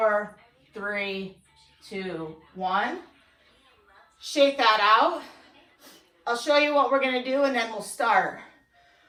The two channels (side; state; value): both; identical; correlation 1.00